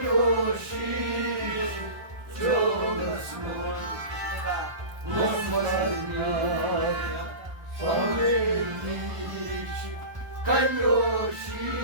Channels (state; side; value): late; left; 1.2 ms